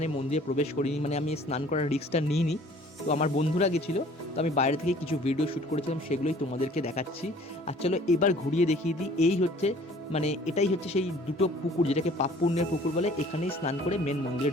মন্দিরে প্রবেশ করিনি, মানে আমি স্নান করার রিস্কটা নিইনি। তো আমার বন্ধুরা গেছিলো, তো আমি বাইরে থেকে কিছু ভিডিও শ্যুট করেছিলাম, সেগুলোই তোমাদেরকে দেখাচ্ছি। আর চলো এবার ঘুরিয়ে দেখিয়ে দিই। এই হচ্ছে মানে এটাই হচ্ছে সেই দুটো পুকুর, যেটাকে পাপ পুণ্যের পুকুর বলে, এখানেই স্নান করে মেন মন্দিরে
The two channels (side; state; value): both; normal; correlation 0.52